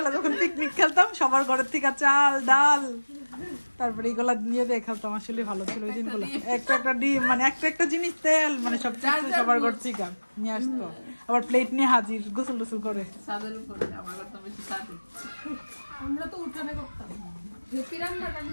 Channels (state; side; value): inverted; both; correlation -1.00